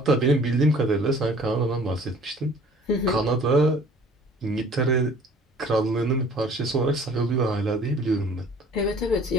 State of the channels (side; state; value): both; normal; correlation 0.51